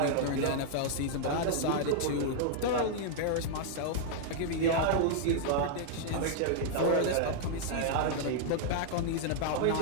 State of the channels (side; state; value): both; different; correlation -0.01